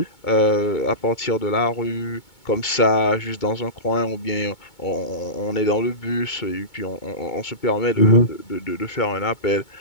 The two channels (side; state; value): right; late; 2.2 ms